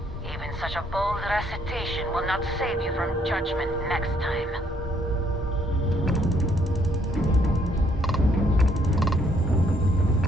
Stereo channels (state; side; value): normal; both; correlation 0.68